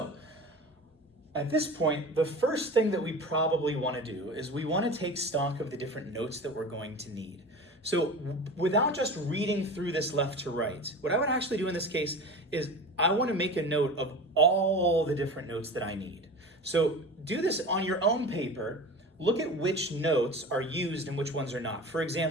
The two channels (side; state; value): both; normal; correlation 0.33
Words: at this point, the first thing that we probably want to do is we want to take stock of the different notes that we're going to need. So without just reading through this left to right, what I would actually do in this case is I want to make a note of all the different notes that I need. So do this on your own paper. Look at which notes are used and which ones are not. For